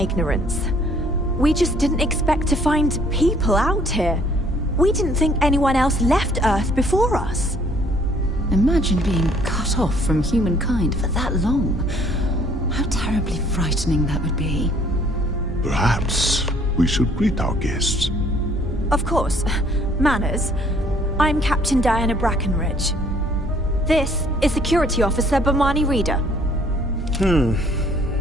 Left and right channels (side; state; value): both; normal; correlation 0.60